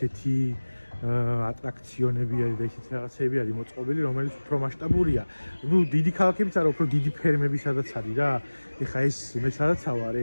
ატრაქციონები არის და ისეთი რაღაცები არის მოწყობილი, რომელიც უფრო მასშტაბურია. ნუ დიდი ქალაქებიც არა, უფრო დიდი ფერმები სადაც არის რა. ეხა ეს მე სადაც ვარ,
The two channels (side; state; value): both; inverted; correlation -1.00